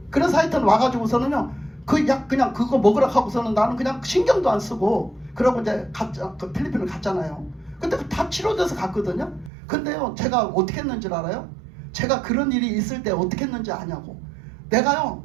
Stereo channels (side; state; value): left; drops out; at 9.5 s